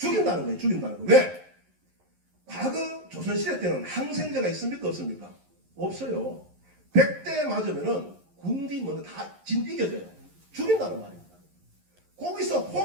거예요. 죽인다는 거. 왜? 과거 조선시대 때는 항생제가 있습니까? 없습니까? 없어요. 100대 맞으면은 군디 먼저 다 이겨져요. 죽인다는 말입니다. 거기서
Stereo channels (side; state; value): left; late; 11 ms